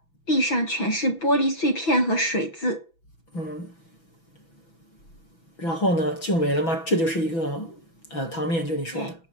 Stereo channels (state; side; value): late; right; 6.0 ms